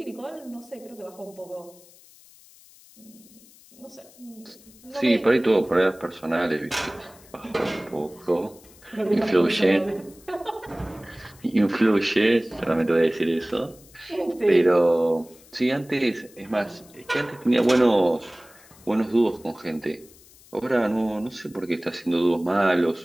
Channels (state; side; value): noise; left; hiss, 25 dB below the sound